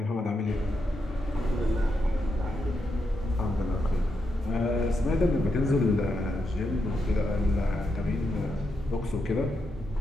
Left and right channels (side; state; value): both; normal; correlation 0.83